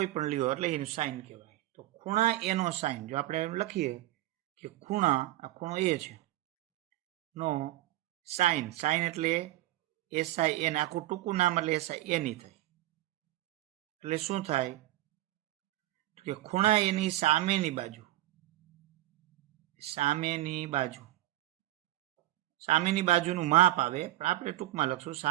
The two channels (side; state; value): left; quieter; 15.7 dB